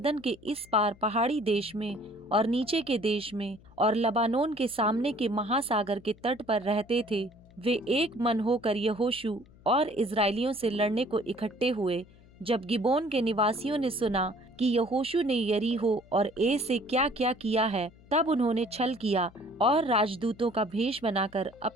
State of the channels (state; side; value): noise; left; hum, 25 dB below the sound